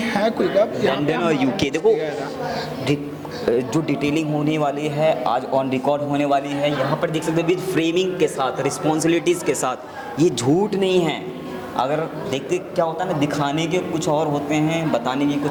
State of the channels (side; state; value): both; identical; correlation 1.00